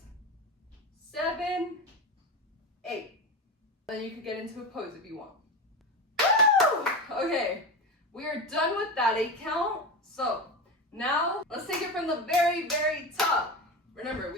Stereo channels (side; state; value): both; normal; correlation 0.22